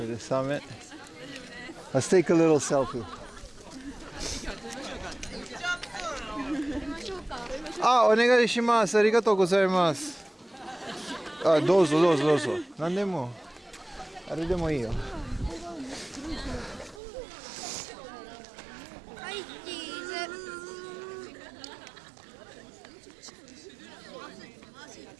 the summit. Let's take a little selfie. Ah, お願いします。ありがとうございます。あ、どうぞどうぞどうぞ。何でも。あれでもいいよ。はい、チーズ。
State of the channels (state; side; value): drops out; left; at 17.0 s